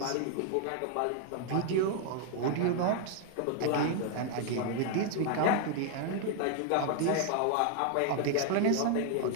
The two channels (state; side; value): different; both; correlation 0.00